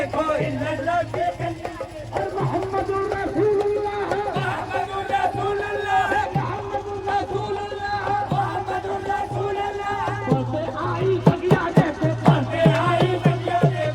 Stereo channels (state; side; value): identical; both; correlation 1.00